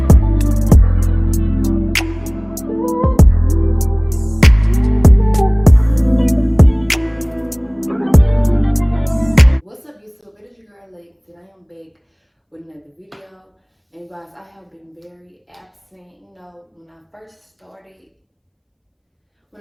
What's up, YouTube? It is your girl Lex, and I am back with another video. And guys, I have been very absent. You know, when I first started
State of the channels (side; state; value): both; identical; correlation 1.00